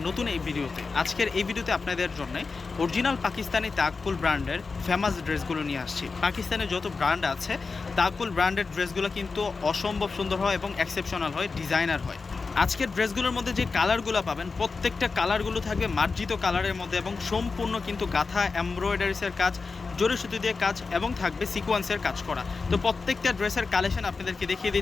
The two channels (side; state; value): right; quieter; 4.4 dB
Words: নতুন এই ভিডিওতে। আজকের এই ভিডিওতে আপনাদের জন্য অরিজিনাল পাকিস্তানি তাকফুল ব্র্যান্ডের ফেমাস ড্রেসগুলো নিয়ে আসছি। পাকিস্তানের যত ব্র্যান্ড আছে তাকফুল ব্র্যান্ডের ড্রেসগুলো কিন্তু অসম্ভব সুন্দর হয় এবং এক্সেপশনাল হয়, ডিজাইনার হয়। আজকের ড্রেসগুলোর মধ্যে যে কালারগুলো পাবেন প্রত্যেকটা কালারগুলো থাকবে মার্জিত কালারের মধ্যে এবং সম্পূর্ণ কিন্তু গাঁথা এমব্রয়ডারিসের কাজ, জরি সুতি দিয়ে কাজ এবং থাকবে সিকোয়েন্সের কাজ করা। তো প্রত্যেকটা ড্রেসের কালেকশন আপনাদেরকে দেখিয়ে